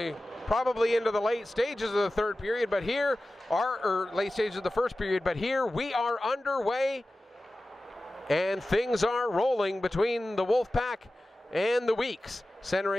probably into the late stages of the 3rd period, but here are late stages of the 1st period, but here we are underway and things are rolling between the Wolfpack and the Weeks.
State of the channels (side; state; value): both; normal; correlation 0.95